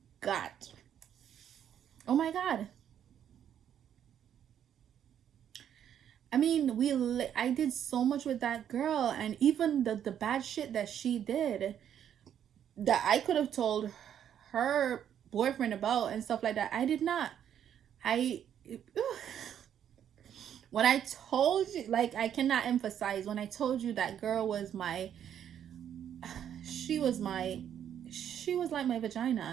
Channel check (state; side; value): quieter; left; 9.5 dB